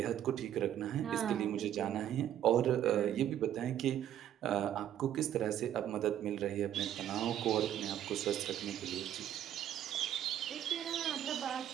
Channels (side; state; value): left; quieter; 11.0 dB